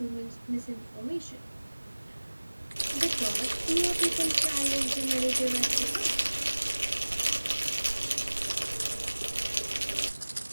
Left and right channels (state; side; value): inverted; both; correlation -1.00